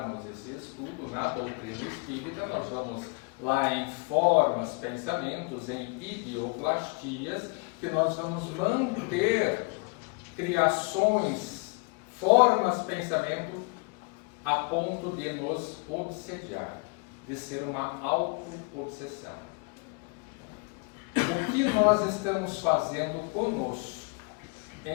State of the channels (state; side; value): quieter; right; 31.5 dB